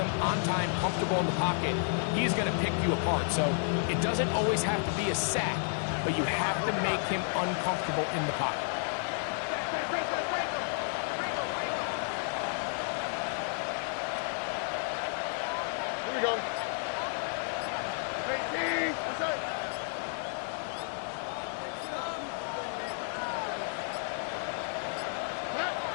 on time, comfortable in the pocket, he's going to pick you apart. So it doesn't always have to be a sack, but you have to make him uncomfortable in the pocket. Here we go. 18. That's it.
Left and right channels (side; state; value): right; silent; 57 dB below the other